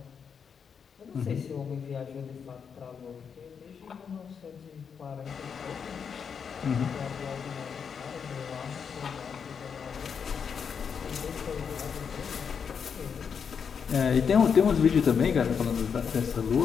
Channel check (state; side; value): quieter; right; 6.7 dB